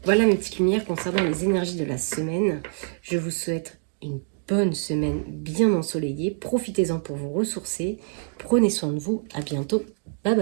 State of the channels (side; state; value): left; silent; 62 dB below the other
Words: Voilà mes petites lumières concernant les énergies de la semaine. Je vous souhaite une bonne semaine bien ensoleillée. Profitez-en pour vous ressourcer. Prenez soin de vous. À bientôt. Bye